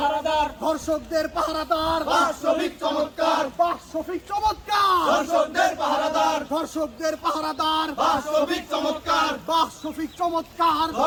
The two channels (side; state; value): both; identical; correlation 1.00